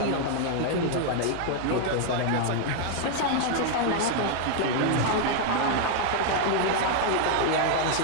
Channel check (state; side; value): different; both; correlation 0.00